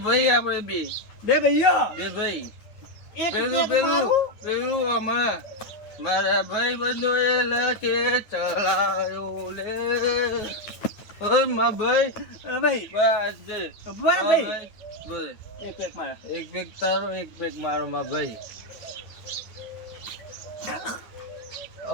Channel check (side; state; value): right; late; 9.2 ms